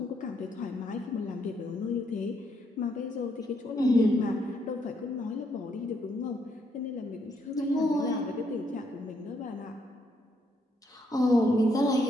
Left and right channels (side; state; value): both; normal; correlation 0.74